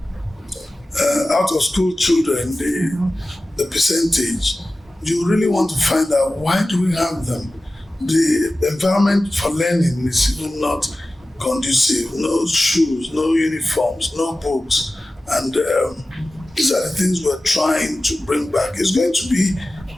out of school children, the percentage, you really want to find out, why do we have them? The environment for learning is even not conducive. No shoes, no uniforms, no books, and these are the things we're trying to bring back. It's going to be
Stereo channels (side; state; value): both; normal; correlation 0.95